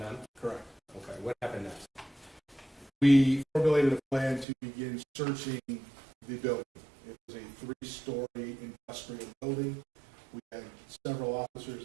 then? Correct. Okay, what happened next? We formulated a plan to begin searching the building. It was a 3-story industrial building. We had several officers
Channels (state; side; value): drops out; left; at 4.5 s